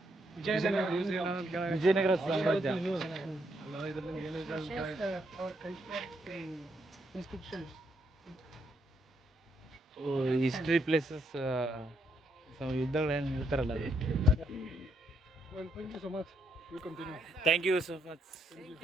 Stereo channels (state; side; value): normal; both; correlation 0.76